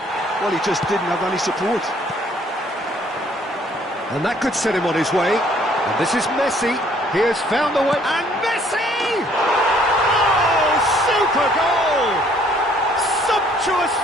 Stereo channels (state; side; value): normal; both; correlation 0.61